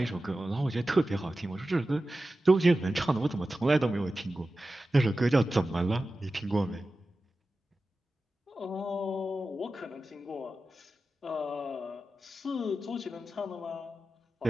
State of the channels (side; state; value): both; normal; correlation 0.94